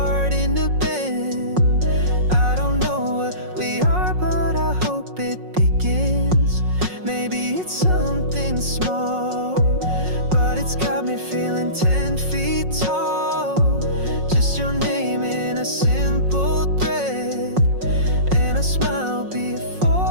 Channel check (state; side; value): late; left; 5.5 ms